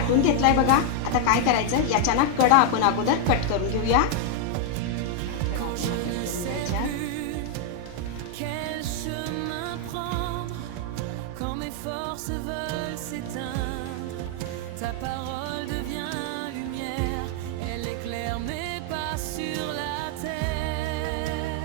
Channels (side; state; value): both; different; correlation 0.00